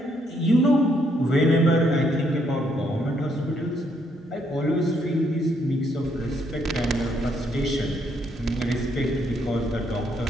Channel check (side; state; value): both; normal; correlation 0.72